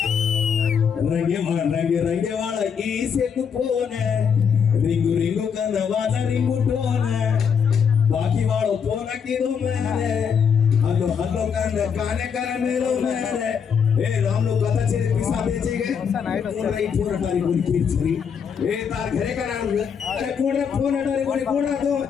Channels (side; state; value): right; quieter; 6.9 dB